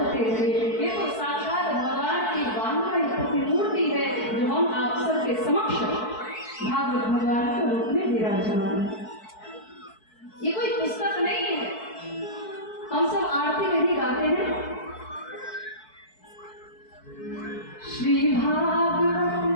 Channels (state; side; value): late; right; 4.6 ms